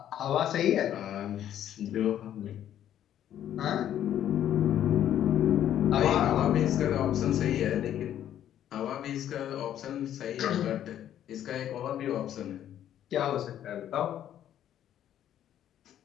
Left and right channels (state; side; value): quieter; right; 11.0 dB